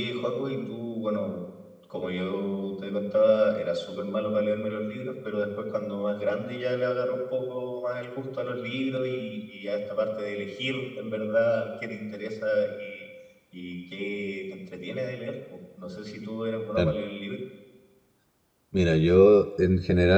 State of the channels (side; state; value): both; identical; correlation 1.00